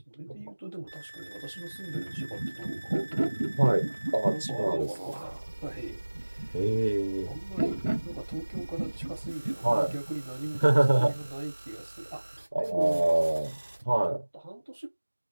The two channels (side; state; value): both; inverted; correlation -1.00